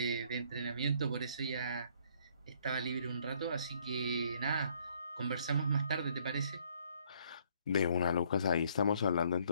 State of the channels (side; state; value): both; inverted; correlation -0.64